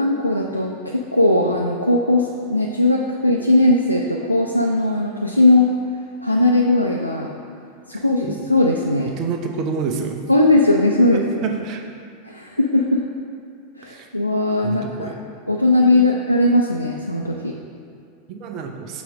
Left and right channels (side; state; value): both; inverted; correlation -0.63